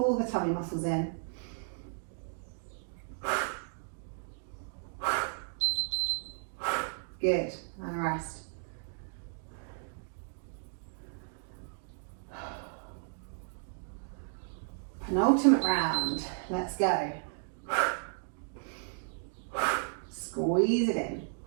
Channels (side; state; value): left; silent; digital silence